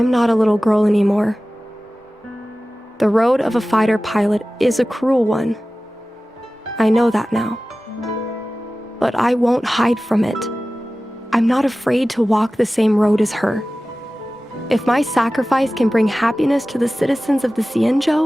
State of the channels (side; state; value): both; normal; correlation 0.96